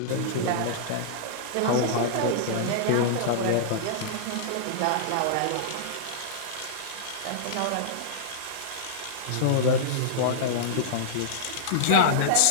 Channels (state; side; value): different; both; correlation -0.02